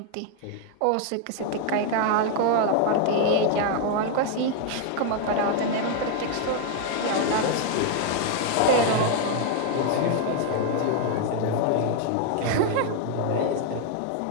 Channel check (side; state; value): both; different; correlation 0.01